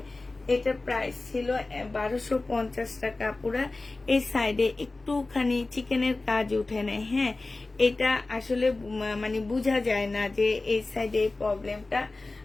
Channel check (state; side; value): quieter; right; 3.3 dB